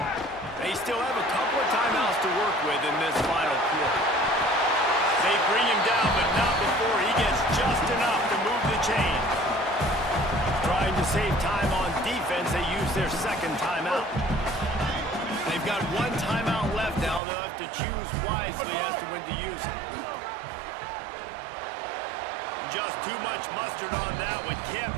They still have a couple of timeouts to work with in this final quarter. They bring him down, but not before he gets just enough to move the chain. Trying to save time on defense, they use their 2nd timeout. They've got 1 timeout left now. They'll have to choose wisely as to when to use it. Just too much mustard on that one. Can't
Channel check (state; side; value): drops out; left; at 17.2 s